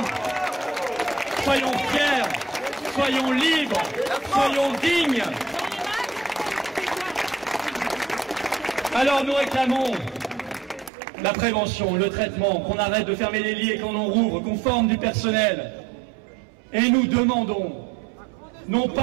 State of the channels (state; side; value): drops out; left; at 10.9 s